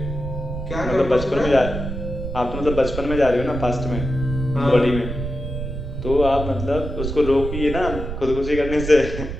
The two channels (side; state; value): right; noise; rumble, 6 dB below the sound